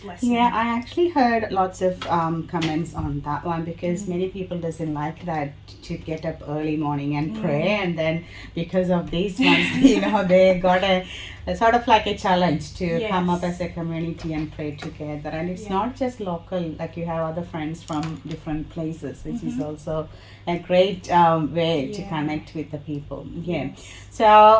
blessing. I actually heard lots of comments on that one, because many people doesn't like that, to get up early morning and pray, and then because of these ones they got a sort of like a challenge to come up as a community and pray together. And it's not just local, like you have other friends from different places, which is also a great way to connect with the people.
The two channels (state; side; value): identical; both; correlation 1.00